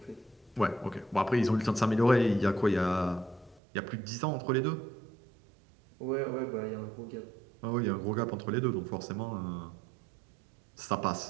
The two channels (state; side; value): drops out; left; at 3.6 s